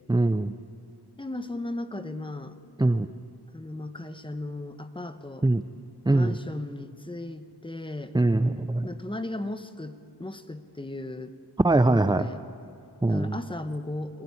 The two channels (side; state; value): both; normal; correlation 0.90